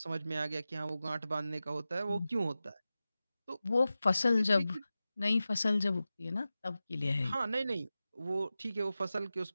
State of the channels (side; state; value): both; inverted; correlation -0.94